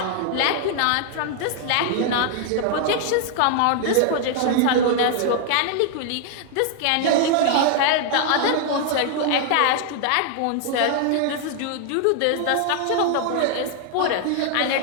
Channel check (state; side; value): different; both; correlation 0.00